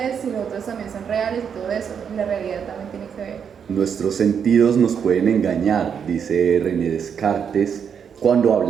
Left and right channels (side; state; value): left; quieter; 7.4 dB